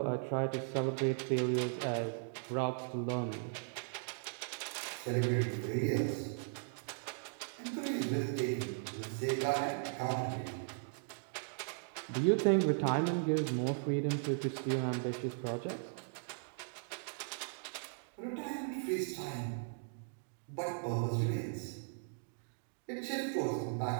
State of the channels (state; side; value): silent; left; digital silence